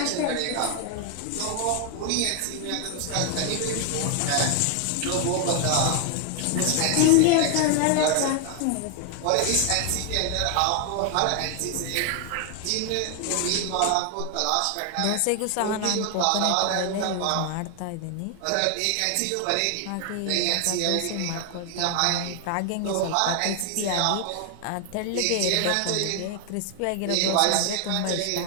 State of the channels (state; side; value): different; both; correlation 0.00